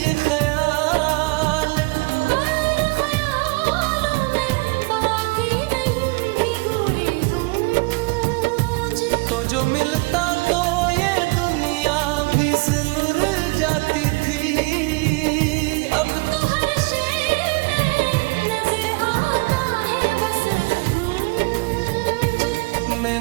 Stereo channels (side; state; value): left; quieter; 27.6 dB